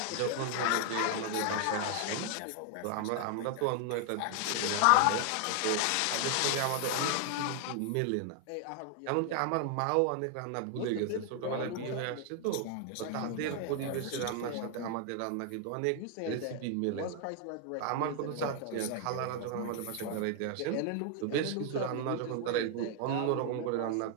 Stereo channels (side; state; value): both; different; correlation 0.00